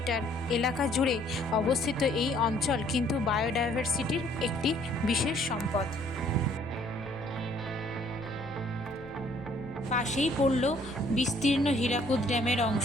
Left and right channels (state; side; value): noise; left; rumble, 20 dB below the sound